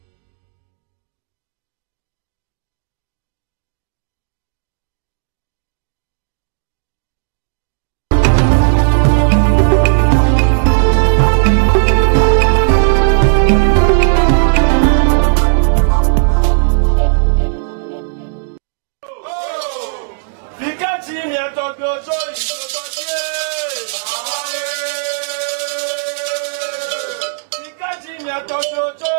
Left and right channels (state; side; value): silent; left; digital silence